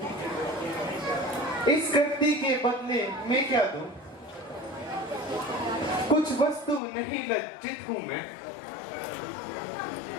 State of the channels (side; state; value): right; drops out; at 6.8 s